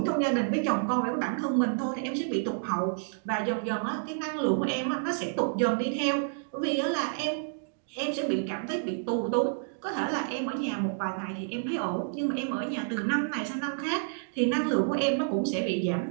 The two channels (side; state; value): left; silent; digital silence